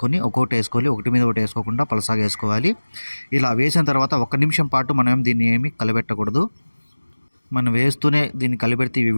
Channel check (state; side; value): inverted; both; correlation -1.00